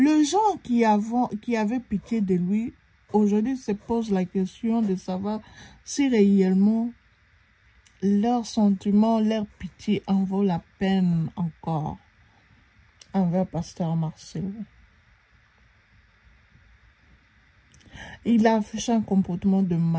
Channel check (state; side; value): identical; both; correlation 1.00